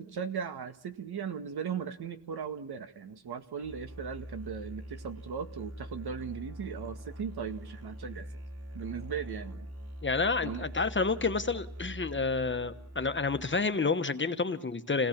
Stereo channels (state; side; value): normal; both; correlation 0.07